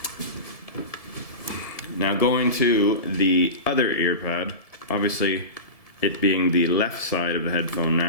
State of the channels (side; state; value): right; late; 1.7 ms